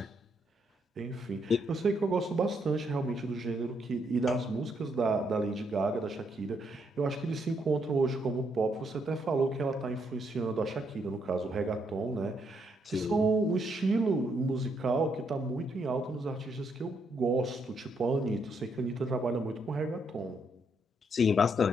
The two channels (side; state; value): both; normal; correlation 0.75